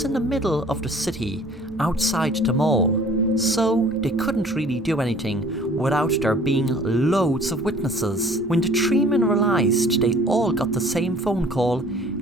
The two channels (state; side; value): normal; both; correlation 0.52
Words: in the middle of the city, outside the mall, so they couldn't really do anything without there being loads of witnesses. When the three men realised they all got the same phone call,